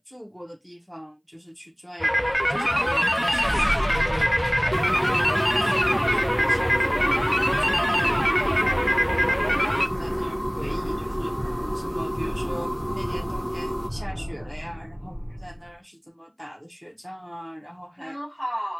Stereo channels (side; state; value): both; identical; correlation 1.00